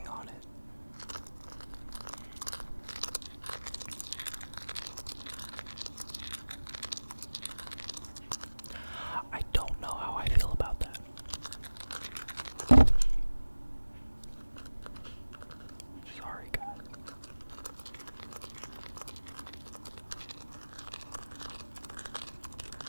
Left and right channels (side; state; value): both; inverted; correlation -1.00